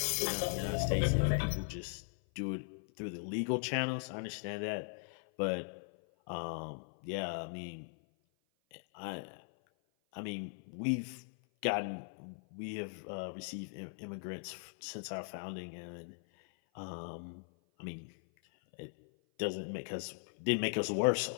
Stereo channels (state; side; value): silent; right; 52 dB below the other